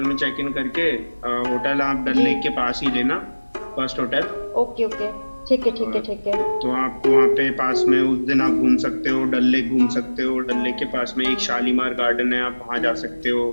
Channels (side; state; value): both; inverted; correlation -1.00